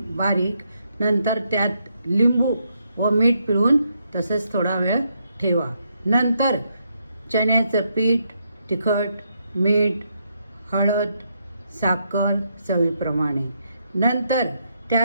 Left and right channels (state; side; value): inverted; both; correlation -0.78